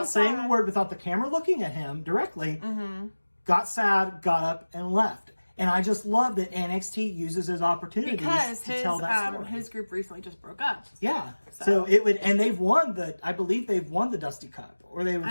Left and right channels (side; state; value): both; inverted; correlation -1.00